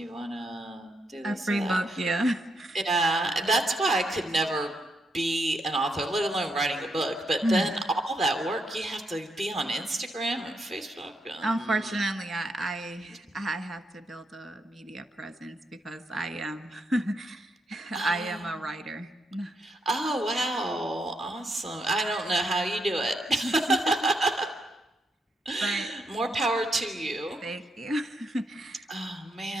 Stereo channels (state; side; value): normal; both; correlation 0.80